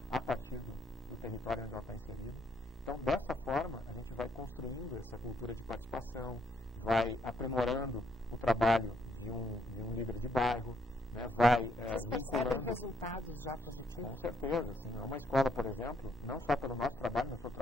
a partir do território onde ela está inserida. Então, dessa forma, a gente vai construindo essa cultura de participação, vai aprimorando o trabalho de um líder de bairro, né, vai Vocês percebem resultados já positivos? Com certeza, sim. É uma escola, por exemplo, não só pelo nosso trabalho, mas pelo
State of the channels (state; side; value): normal; both; correlation 0.71